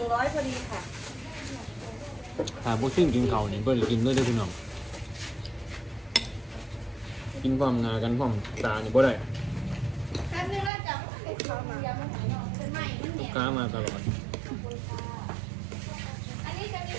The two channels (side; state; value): left; drops out; at 10.7 s